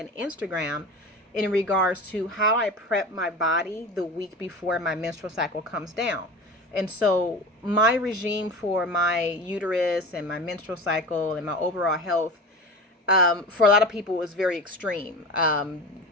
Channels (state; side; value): normal; both; correlation 0.31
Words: Instagram in regards to how I prep my body the week before my menstrual cycle comes down. And so my regime for my uterus and my menstrual cycle and my overall health, for a lot of people, is very extreme.